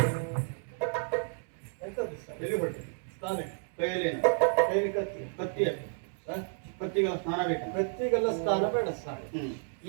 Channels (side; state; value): left; silent; 57 dB below the other